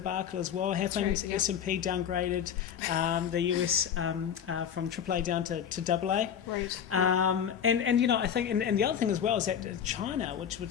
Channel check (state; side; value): quieter; right; 8.5 dB